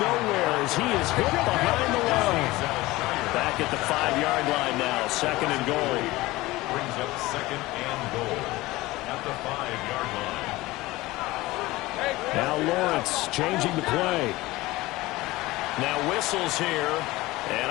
as he is hit behind the line. Back at the 5-yard line now, 2nd and goal. Brings up 2nd and goal at the 5-yard line. Now Lawrence changing the play. Now whistles here, and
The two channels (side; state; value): right; quieter; 19.3 dB